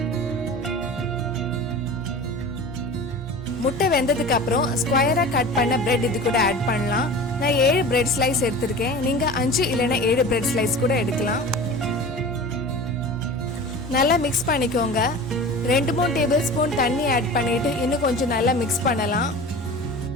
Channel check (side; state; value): both; normal; correlation 0.36